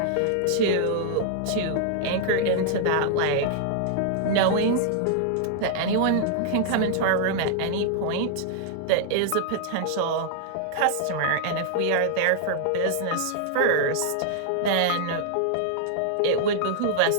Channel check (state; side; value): different; both; correlation -0.01